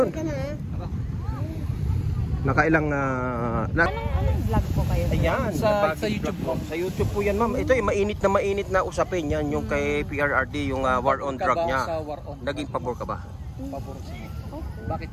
Nakailang Anong vlog po kayo? Ayan, Sa Yabagis YouTube vlog po. Sa YouTube po yan, ma'am. Ito yung mainit na usapin yan. Yung kay PRRD, yung war on drug niya. Sa war on. Naging pabor ka ba? Pabor sige. Okay. Bakit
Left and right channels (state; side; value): identical; both; correlation 1.00